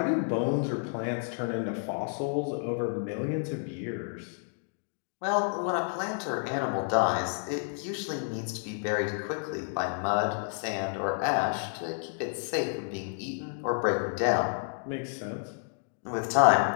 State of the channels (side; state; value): right; silent; digital silence